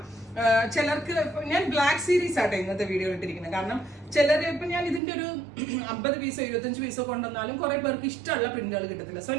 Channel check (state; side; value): drops out; left; at 5.0 s